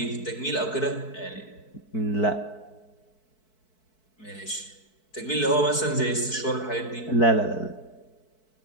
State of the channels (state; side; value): late; right; 4.6 ms